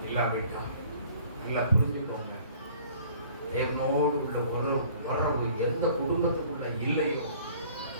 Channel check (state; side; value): inverted; both; correlation -0.53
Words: இல்லாவிட்டால் நல்லா புரிஞ்சுக்கோங்க. தேவனோடு உள்ள உறவு எந்த குடும்பத்துக்குள்ள இல்லையோ,